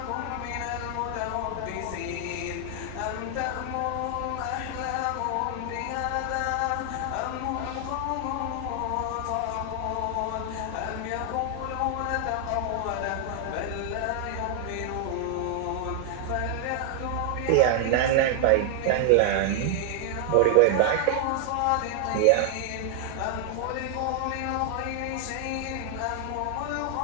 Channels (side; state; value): both; different; correlation 0.00